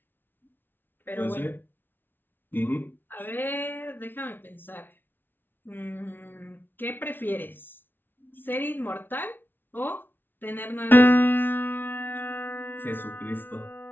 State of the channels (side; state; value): right; late; 0.098 ms